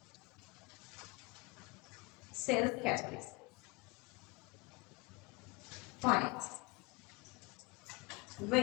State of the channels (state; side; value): quieter; right; 25.4 dB